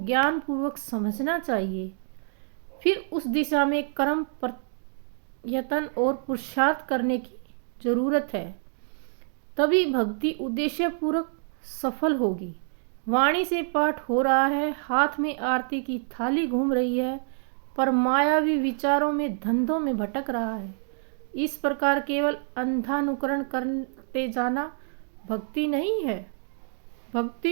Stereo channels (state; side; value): silent; left; digital silence